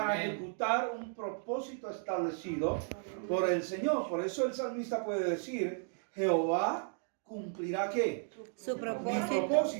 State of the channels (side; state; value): left; silent; 55 dB below the other